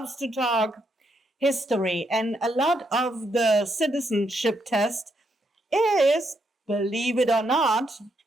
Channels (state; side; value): normal; both; correlation 0.78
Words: to talk history. And a lot of the citizenship test is, believe it or not,